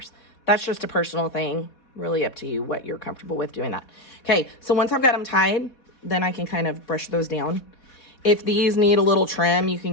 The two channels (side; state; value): right; late; 4.1 ms